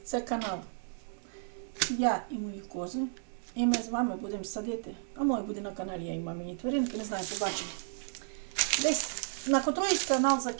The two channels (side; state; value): left; silent; digital silence